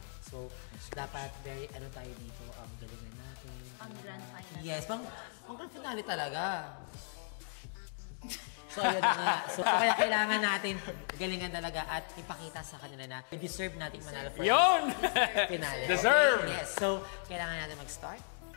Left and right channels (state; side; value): silent; right; digital silence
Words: So, dapat very tayo dito, ang galingan natin. Ang grand final. Yes, ang grand finale talaga. So, yun nga. So, kaya kailangan natin galingan talaga at ipakita sa kanila na deserve natin manalo for Yun! finale. Deserve! Yes. So, kailangan natin mag-start.